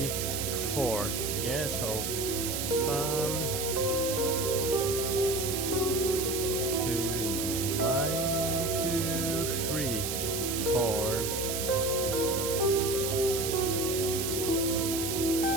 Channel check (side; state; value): right; noise; hiss, 3 dB below the sound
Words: 4. Yeah, so bum, 2, 1, 2, 3, 4.